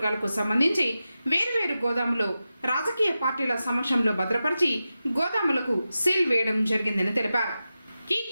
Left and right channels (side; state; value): both; inverted; correlation -0.92